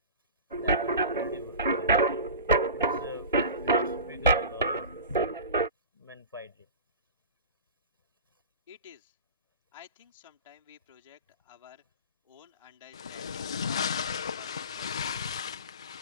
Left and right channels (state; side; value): inverted; both; correlation -0.34